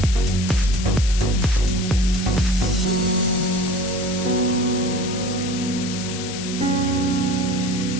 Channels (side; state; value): left; noise; hiss, 9 dB below the sound